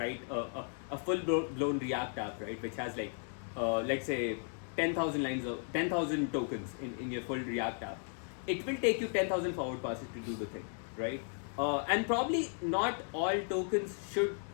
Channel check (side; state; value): right; silent; 54 dB below the other